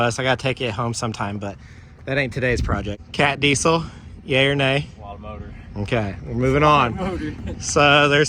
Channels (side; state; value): both; identical; correlation 1.00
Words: I gotta take it home sometime, but that ain't today's project. Cat diesel, yay or nay? A lot of motor. Okay, we're moving on. So